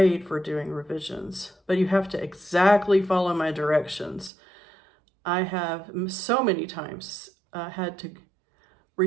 for doing revisions, but you have to exactly follow my directions. I have so many times had to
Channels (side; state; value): left; drops out; at 4.3 s